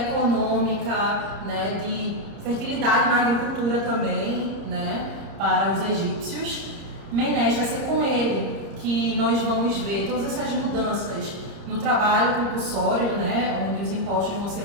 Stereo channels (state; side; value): late; left; 30 ms